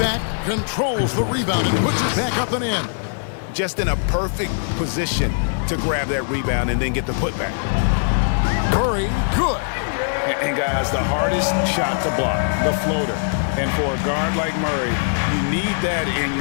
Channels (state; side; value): silent; right; digital silence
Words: controls the rebound and puts it back up and in. Just in a perfect position to grab that rebound and then get the putback. Murray, good. And guys, the hardest shot to block, the floater. And for a guard like Murray, you need that in